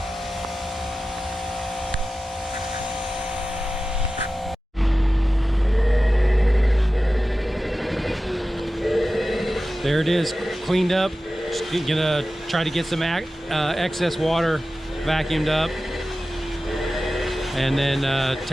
There it is, cleaned up. Just gonna try to get some excess water vacuumed up, and then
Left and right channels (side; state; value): both; normal; correlation 0.94